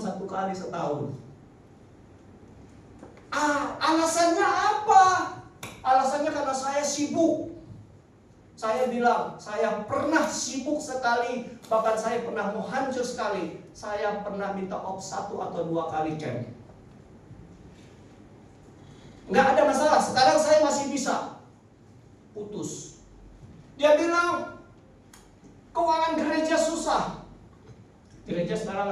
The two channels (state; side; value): identical; both; correlation 1.00